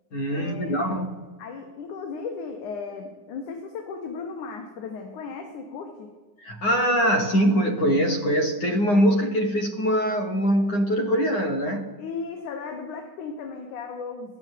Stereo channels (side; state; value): right; late; 9.8 ms